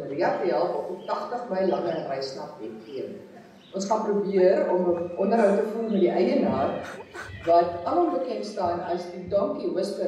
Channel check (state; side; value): identical; both; correlation 1.00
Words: te help op die 80 myl lange reis na Bethlehem. Ons gaan probeer om 'n onderhoud te voer met die eienaar, wat alom bekend staan as die donkie